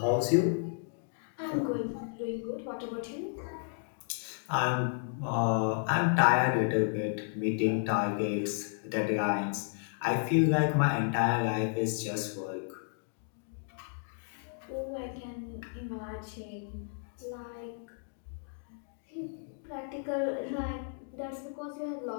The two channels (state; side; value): silent; right; digital silence